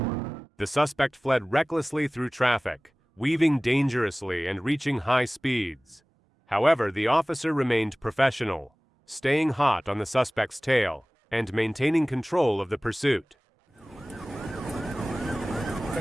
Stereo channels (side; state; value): both; normal; correlation 0.98